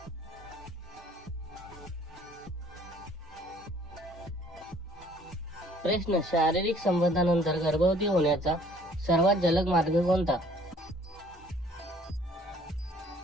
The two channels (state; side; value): normal; both; correlation 0.57